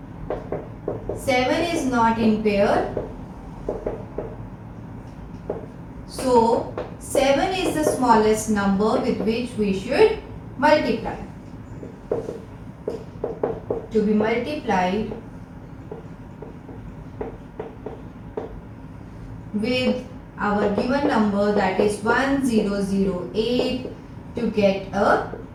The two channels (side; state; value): both; identical; correlation 1.00